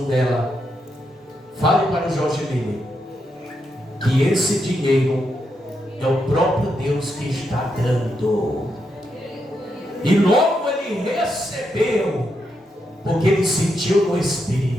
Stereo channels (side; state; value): both; normal; correlation 0.82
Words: dela: fale para o Jorge Miller que esse dinheiro é o próprio Deus que está dando. E logo ele recebeu, porque ele sentiu no